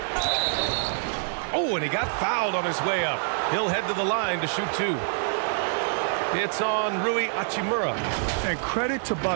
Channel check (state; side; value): silent; left; 61 dB below the other